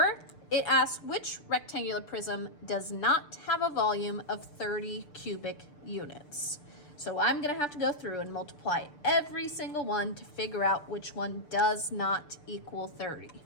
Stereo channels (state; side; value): late; right; 6.8 ms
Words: it asks which rectangular prism does not have a volume of 30 cubic units. So I'm gonna have to go through and multiply every single one to figure out which one does not equal 30.